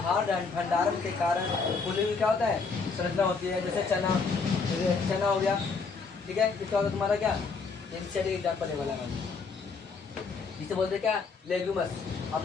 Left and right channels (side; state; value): right; quieter; 4.7 dB